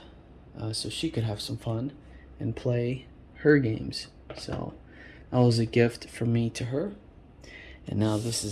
so she could have some fun and play her games. So that was a gift from me to her, and now this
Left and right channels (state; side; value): identical; both; correlation 1.00